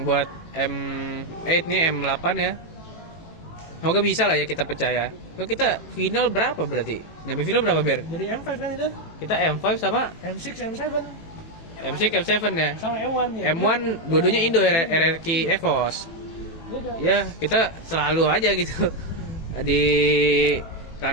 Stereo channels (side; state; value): right; late; 18 ms